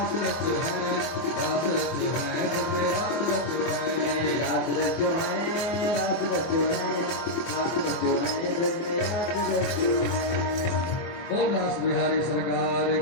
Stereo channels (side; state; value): right; late; 24 ms